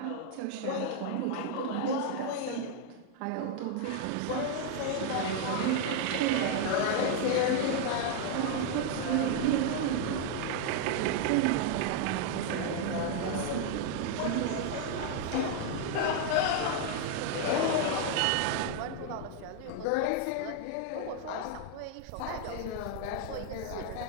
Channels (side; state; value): both; different; correlation 0.00